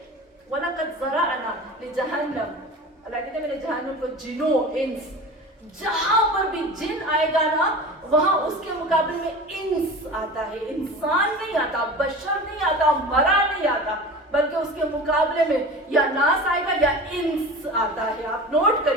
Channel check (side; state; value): both; normal; correlation 0.35